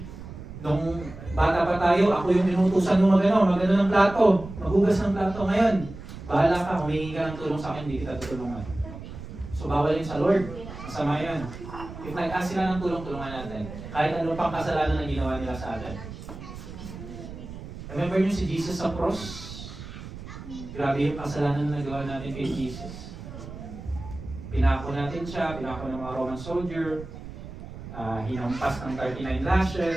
nung bata pa tayo, ako yung inutusan mo magano ng plato, maghugas ng plato. Ngayon, bahala ka, humingi ka ng tulong sa akin, hindi kita tutulungan. So, bawal yun sa Lord. Masama yun. If nag-ask sila ng tulong-tulungan natin, kahit ano pang kasalanan na ginawa nila sa atin. Remember niyo si Jesus sa cross? Grabe yung kasalanan na nagawa natin kay Jesus. Pinako natin siya, pinako ng mga Roman soldier, hinampas ng 39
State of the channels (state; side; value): noise; right; rumble, 12 dB below the sound